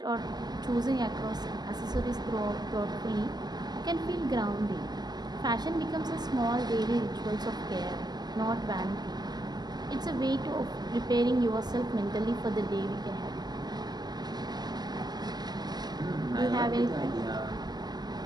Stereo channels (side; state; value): left; late; 0.20 ms